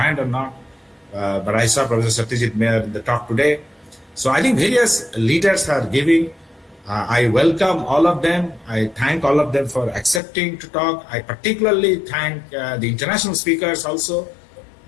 or not, but I saw Professor Satyajit Mayer in the talk today. So I think various leaders are giving. I welcome all of them. I thank all of them for accepting to talk. I particularly thank the international speakers also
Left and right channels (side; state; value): right; drops out; at 10.2 s